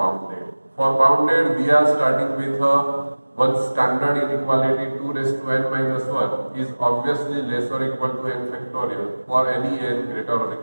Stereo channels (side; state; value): both; inverted; correlation -1.00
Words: For bounded, we are starting with one standard inequality 2 raised to n minus 1 is obviously less or equal to n factorial for any n greater or